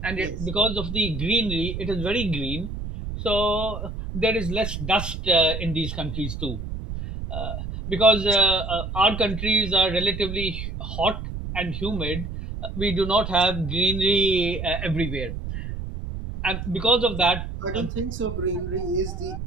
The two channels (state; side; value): noise; right; rumble, 6 dB below the sound